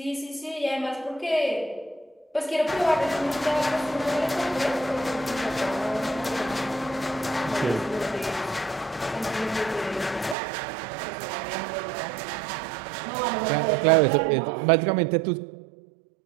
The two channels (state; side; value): drops out; left; at 10.4 s